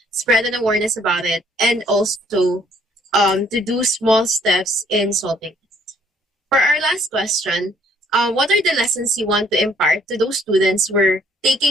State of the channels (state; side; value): normal; both; correlation 0.63